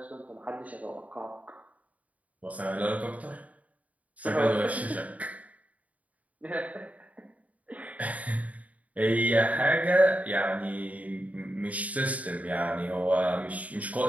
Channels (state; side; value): late; left; 0.070 ms